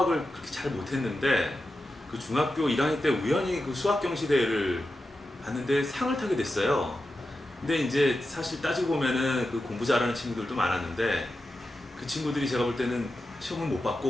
그렇게 잘 못했는데 그 중학교 1학년 때 우연히 그 수학 경시대회를 봤는데 상을 타게 됐어요. 근데 이제 사실 따지고 보면은 그 공부 잘하는 친구들도 많았는데 그 친구들이 제가 볼 때는 시험을 못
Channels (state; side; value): normal; both; correlation 0.91